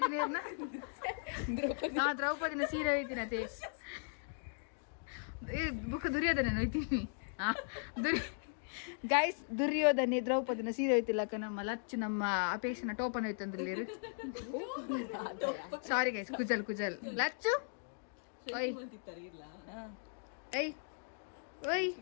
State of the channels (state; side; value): silent; right; digital silence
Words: ಏರ್ನ ದ್ರೌಪದಿನ ಸೀರೆ ಹೋಯ್ತೀನಿ ಅದೇ ಬುಕ್ ದುರ್ಯೋಧನ ಹೋಯ್ತೀನಿ ಗೈಸ್ ದುರ್ಯೋಧನೆ ದ್ರೌಪದಿನ ಸೀರೆ ಹೋಯ್ತಿಲ್ಲಕ್ಕ ನಮ್ಮ ಲಚ್ಚು ನಮ್ಮ ಅಪೇಕ್ಷನ ಟೋಪನ್ ಹೋಯ್ತಂದ್ರಲ್ಲಿ ಸಾರಿ ಗೈಸ್ ಕುಜಲ್ ಲಚ್ಚು ಓಯ್ ಏಯ್ ಓಯ್